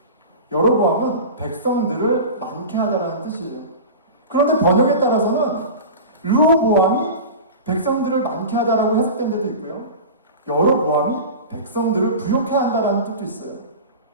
여로보암은 백성들을 많게 하다라는 뜻이에요. 그런데 번역에 따라서는 르호보암이 백성들을 많게 하다라고 해석된 데도 있고요. 여로보암이 백성들을 부욕해 한다라는 뜻도 있어요.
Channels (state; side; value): inverted; both; correlation -0.31